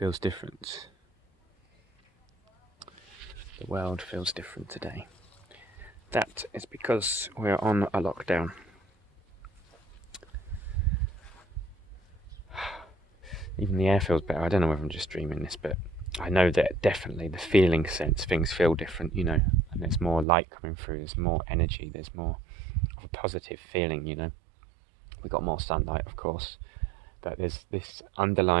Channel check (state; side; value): drops out; left; at 20.2 s